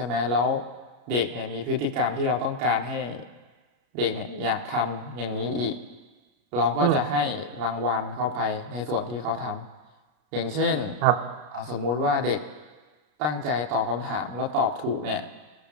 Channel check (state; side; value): late; left; 33 ms